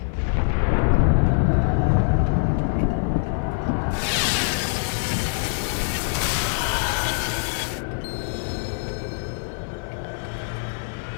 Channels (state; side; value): silent; right; 55 dB below the other